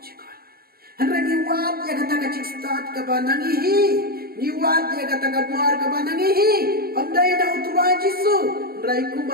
cika. Hendra niwat ya kata kacik start ke banangihi, niwat ya kata kabuar ke banangihi. Amdai na utuwa Jisu, hendra iku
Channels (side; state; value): left; late; 0.44 ms